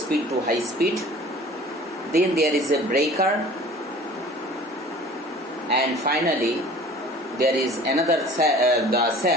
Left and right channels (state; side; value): normal; both; correlation 0.46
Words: to high speed. Then there is a breaker, and finally there is another the